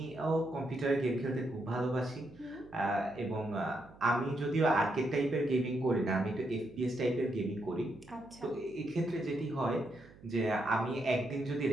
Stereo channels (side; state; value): right; noise; hum, 22 dB below the sound